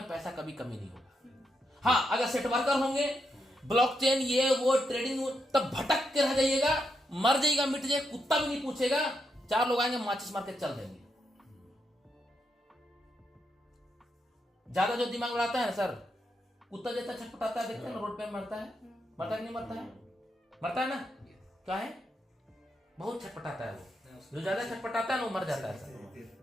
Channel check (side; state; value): both; normal; correlation 0.82